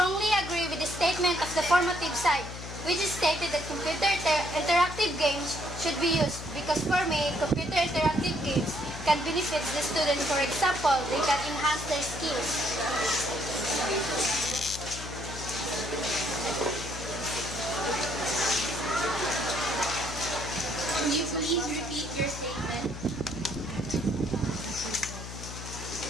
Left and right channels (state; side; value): noise; left; hum, 10 dB below the sound